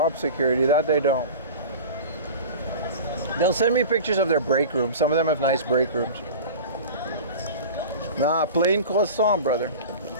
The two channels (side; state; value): both; inverted; correlation -0.35